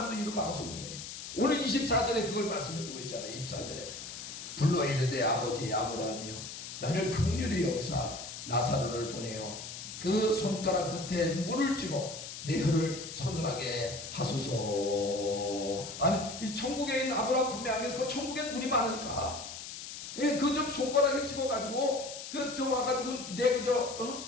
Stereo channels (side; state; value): left; noise; hiss, 10 dB below the sound